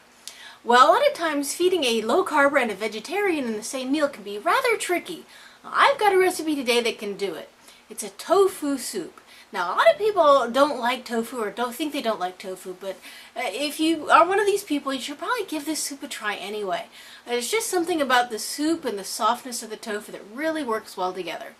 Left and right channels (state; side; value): identical; both; correlation 1.00